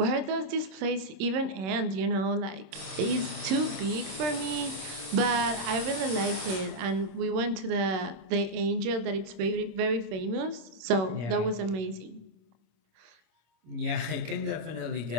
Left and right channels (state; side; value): late; left; 26 ms